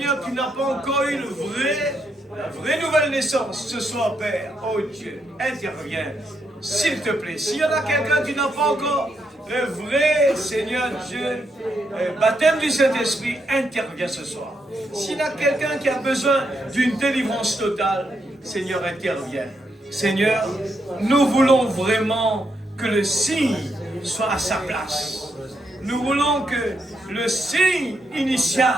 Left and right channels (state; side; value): normal; both; correlation 0.80